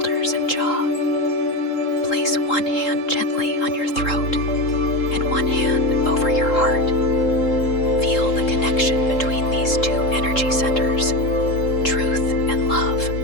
and jaw. Place one hand gently on your throat and one hand over your heart. Feel the connection between these two energy centers: truth and love,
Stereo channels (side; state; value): right; late; 3.7 ms